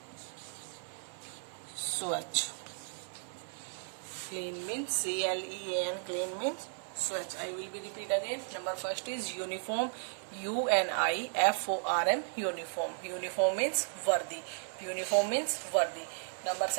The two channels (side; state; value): left; silent; 54 dB below the other